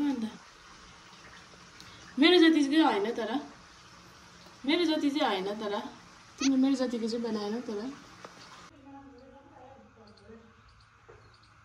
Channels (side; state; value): both; identical; correlation 1.00